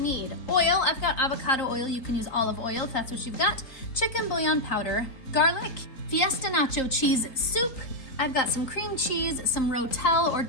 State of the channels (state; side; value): late; right; 3.8 ms